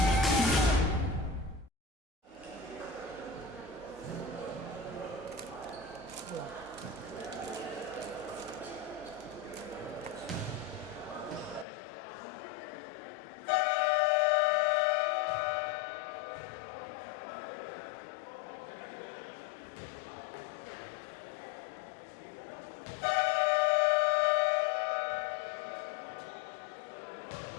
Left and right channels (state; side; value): drops out; right; at 11.7 s